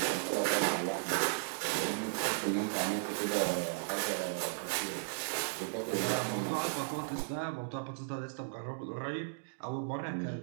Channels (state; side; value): silent; left; digital silence